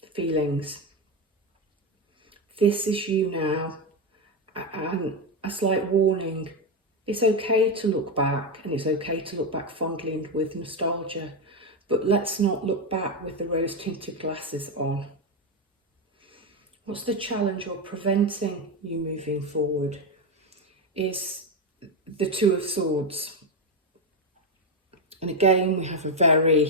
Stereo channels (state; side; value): normal; both; correlation 0.09